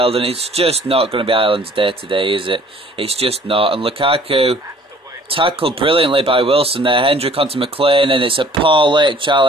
and it's just not going to be Ireland's day today, is it? It's just not. And Lukaku tackled brilliantly by Wilson there. Hendrick onto McLean, and it's a poor late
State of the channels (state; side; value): normal; both; correlation 0.55